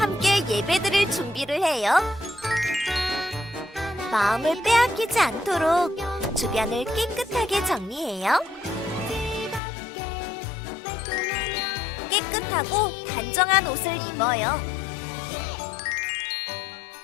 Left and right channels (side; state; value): right; drops out; at 9.6 s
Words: 예배드릴 준비를 해요. 마음을 빼앗기지 않도록 주변을 깨끗하게 정리해요. 깨끗하고 단정한 옷을 입어요.